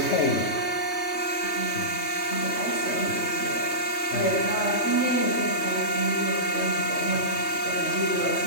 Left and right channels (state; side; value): late; right; 3.2 ms